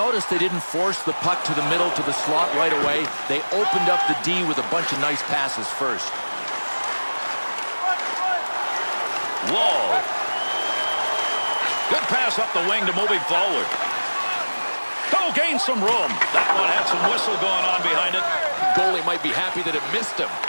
they didn't force the puck to the middle to the slot right away. They opened up the D with a bunch of nice passes first. Wall. Good pass up the wing to move him forward. Oh, gain some room. That one had some whistle going on behind it. Goalie might be happy that it missed him.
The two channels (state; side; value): inverted; both; correlation -1.00